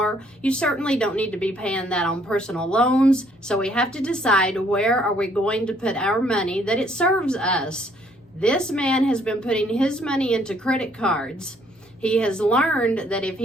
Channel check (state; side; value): normal; both; correlation 0.65